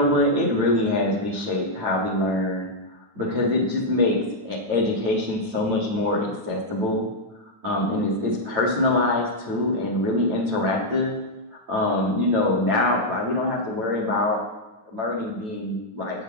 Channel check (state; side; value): late; left; 9.0 ms